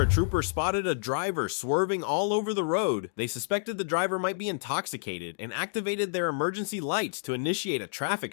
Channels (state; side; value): silent; right; digital silence